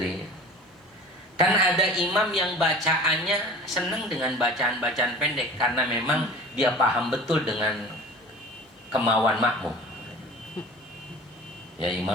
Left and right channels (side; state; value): both; normal; correlation 0.40